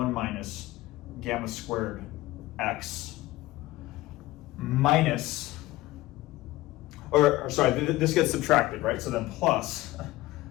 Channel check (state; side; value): quieter; right; 17.8 dB